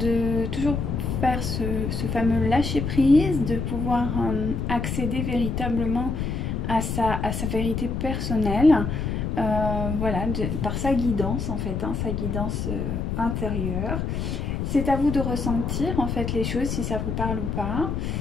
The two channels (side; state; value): left; noise; rumble, 2 dB below the sound